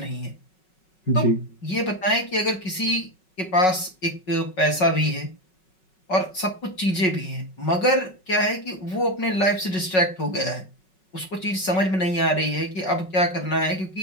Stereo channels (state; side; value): late; right; 5.4 ms